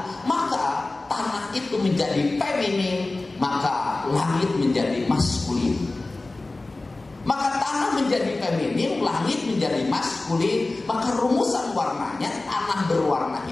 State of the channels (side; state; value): right; quieter; 3.1 dB